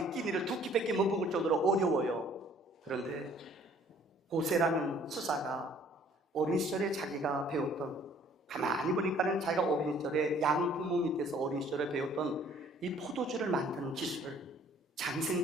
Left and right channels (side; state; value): both; normal; correlation 0.57